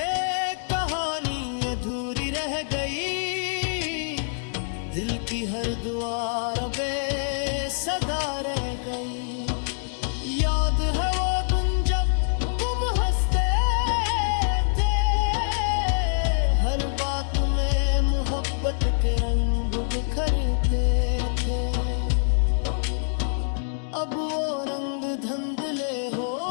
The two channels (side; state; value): right; silent; digital silence